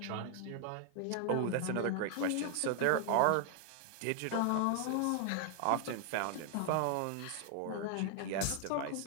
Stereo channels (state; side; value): different; both; correlation 0.00